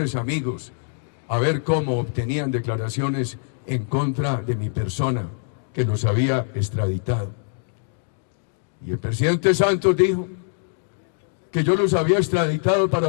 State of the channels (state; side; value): silent; right; digital silence